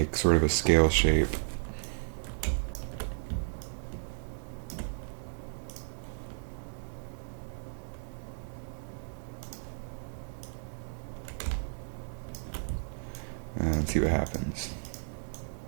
sort of a scale shape. And see what happens.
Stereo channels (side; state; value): left; silent; digital silence